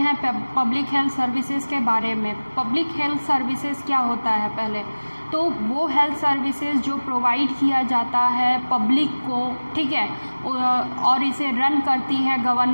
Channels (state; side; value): inverted; both; correlation -1.00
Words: पब्लिक हेल्थ सर्विसेज के बारे में। पब्लिक हेल्थ सर्विसेज क्या होता है पहले तो वो हेल्थ सर्विसेज जो प्रोवाइड किया जाता है पब्लिक को, ठीक है, और इसे रन करती है